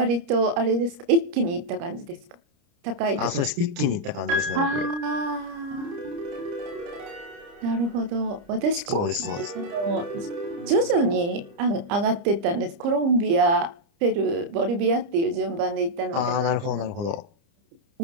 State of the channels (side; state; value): left; late; 30 ms